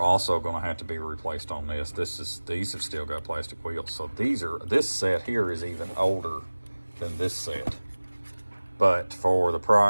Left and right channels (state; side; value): inverted; both; correlation -1.00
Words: going to have to be replaced on this. These have still got plastic wheels. So this set here is even older than this set. But for the